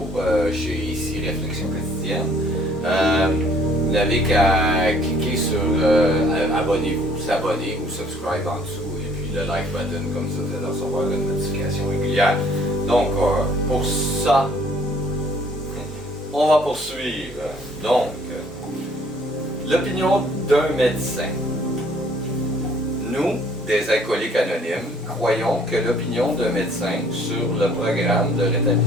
chez ici Réflexion quotidienne, vous n'avez qu'à cliquer sur abonnez-vous, s'abonner ou subscribe en dessous et puis le like button, comme ça vous allez recevoir une notification régulière. Donc pour ça, on va poursuivre. Donc, l'opinion d'un médecin. Nous, des alcooliques anonymes, croyons que l'opinion d'un médecin sur le programme de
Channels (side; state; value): both; normal; correlation 0.58